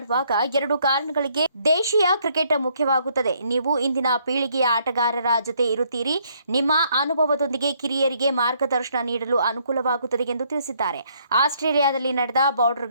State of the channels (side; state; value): both; inverted; correlation -0.68